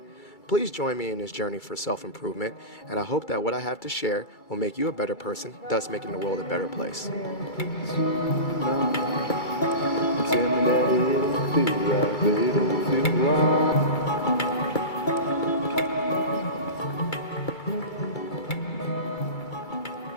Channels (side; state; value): right; late; 2.3 ms